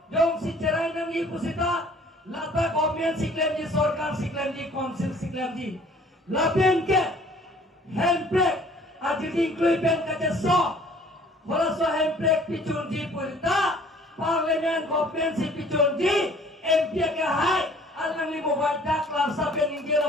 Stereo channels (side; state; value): both; normal; correlation 0.54